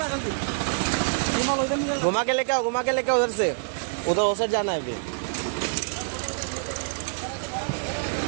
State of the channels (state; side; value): silent; left; digital silence